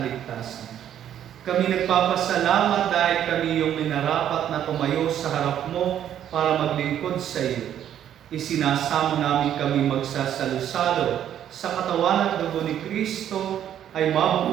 Kami nagpapasalamat dahil kami yung minarapat na tumayo sa harap mo para maglingkod sa iyo. Isinasamo namin kami magsasalo-salo sa katawan at dugo ni Kristo ay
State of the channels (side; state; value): left; quieter; 10.4 dB